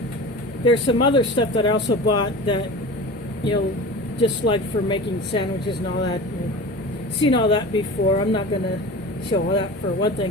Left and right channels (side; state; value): both; normal; correlation 0.34